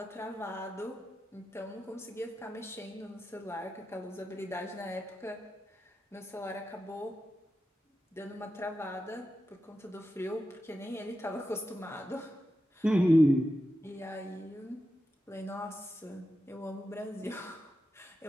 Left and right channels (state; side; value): normal; both; correlation 0.90